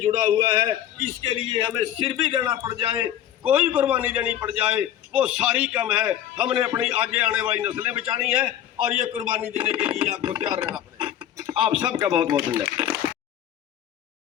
हुआ है। इसके लिए हमें सिर भी देना पड़ जाए, कोई कुर्बानी देनी पड़ जाए, वो सारी कम है। हमने अपनी आगे आने वाली नस्लें बचानी है और ये कुर्बानी देने के लिए आपको तैयार रहना पड़ेगा। आप सबका बहुत बहुत धन्यवाद।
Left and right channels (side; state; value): right; quieter; 11.3 dB